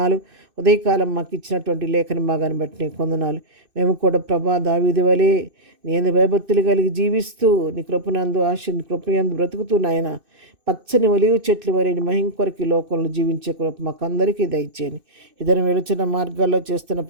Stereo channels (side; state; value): left; late; 2.6 ms